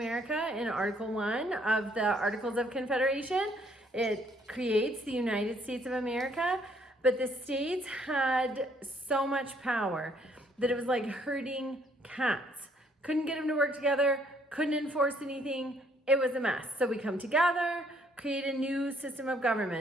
in Article 1 of the Articles of Confederation. It creates the United States of America, but the states had so much power that it was like herding cats. Couldn't get them to work together, couldn't enforce anything. It was a mess. So we come together, create a new system of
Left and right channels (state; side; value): normal; both; correlation 0.66